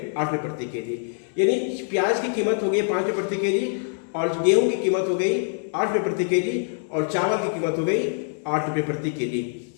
8 रुपये प्रति केजी। यानी प्याज की कीमत हो गई 5 रुपये प्रति केजी और गेहूं की कीमत हो गई 8 रुपये प्रति केजी और चावल की कीमत हो गई 8 रुपये प्रति केजी।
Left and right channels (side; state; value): right; silent; 62 dB below the other